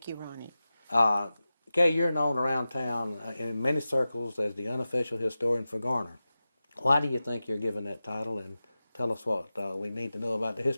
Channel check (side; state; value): both; inverted; correlation -0.94